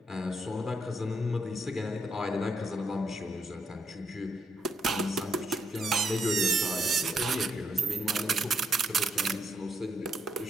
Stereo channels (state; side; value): normal; both; correlation 0.77